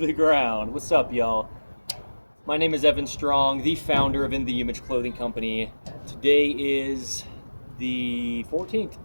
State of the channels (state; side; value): inverted; both; correlation -1.00